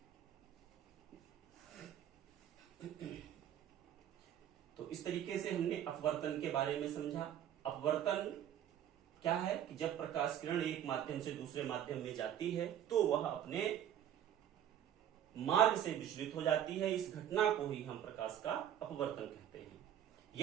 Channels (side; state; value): left; quieter; 10.4 dB